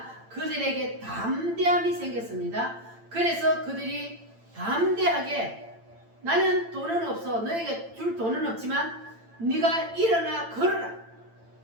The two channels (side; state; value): left; late; 8.9 ms